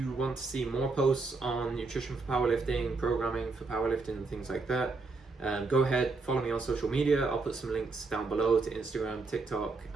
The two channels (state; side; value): quieter; left; 3.8 dB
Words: want to see more posts on nutrition for powerlifting, programming for powerlifting and things like that, go ahead, follow me on social media. I'll put some links down below to Instagram, TikTok